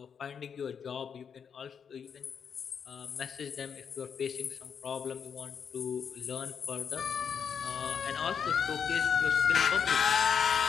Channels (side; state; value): right; quieter; 7.0 dB